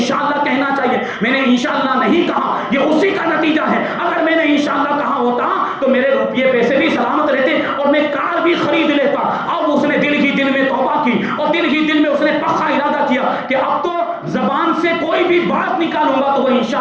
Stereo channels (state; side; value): identical; both; correlation 1.00